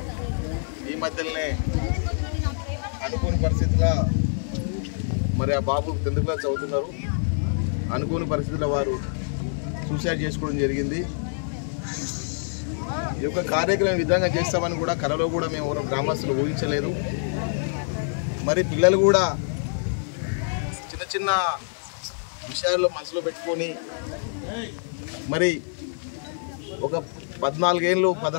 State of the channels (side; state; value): right; silent; digital silence